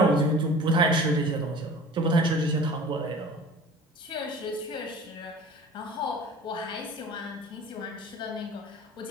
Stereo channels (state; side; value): normal; both; correlation 0.42